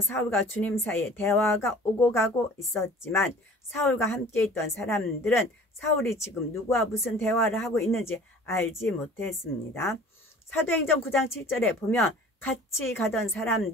주님 사이에 대화가 오고 가고 있었지만 사울과 함께 있던 사람들은 사울이 지금 누구와 무슨 대화를 하고 있는지 알지 못했습니다. 사도행전 9장 7절에 보면 같이 가던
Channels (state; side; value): normal; both; correlation 0.46